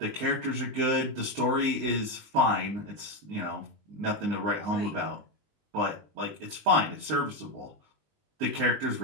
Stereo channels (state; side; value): late; left; 19 ms